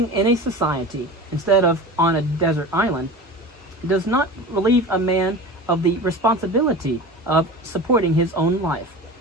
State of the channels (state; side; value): normal; both; correlation 0.33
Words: in a society instead of on a desert island does not relieve a man of the responsibility of supporting his own life.